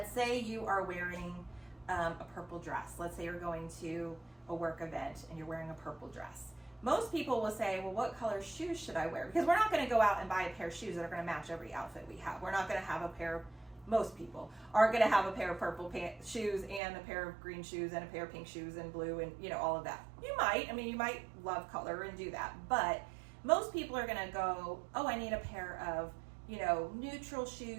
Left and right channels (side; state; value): left; drops out; at 16.8 s